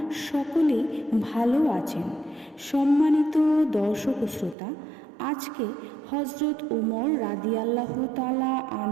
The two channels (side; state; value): left; drops out; at 4.5 s